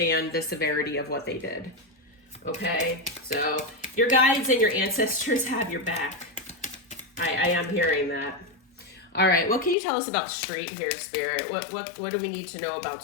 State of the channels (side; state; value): right; drops out; at 9.8 s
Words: the severity of what they did. Okay. So your guides and your ancestors have your back. I am hearing that. All right. What can you tell us about Street here, Spirit? What do we need to know about